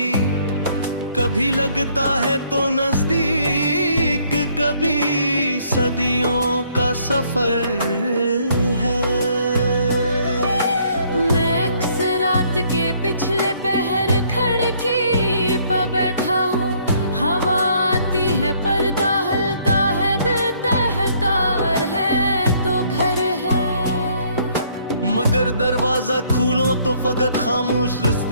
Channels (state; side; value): inverted; both; correlation -0.65